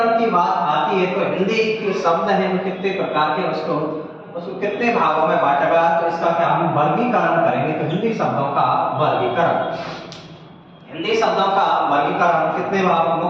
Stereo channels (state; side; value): identical; both; correlation 1.00